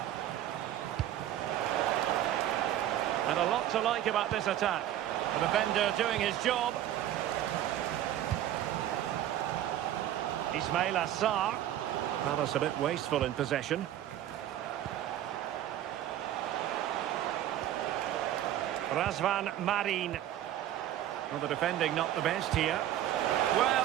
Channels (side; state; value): left; quieter; 12.1 dB